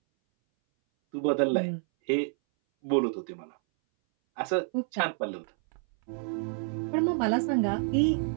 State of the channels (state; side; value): silent; left; 59 dB below the other